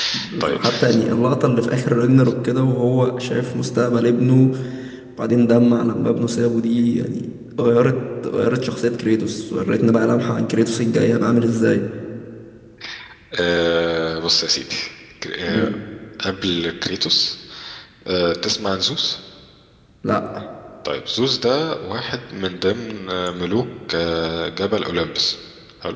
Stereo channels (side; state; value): both; identical; correlation 1.00